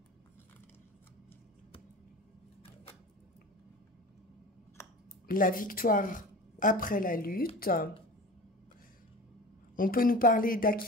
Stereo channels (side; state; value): both; normal; correlation 0.35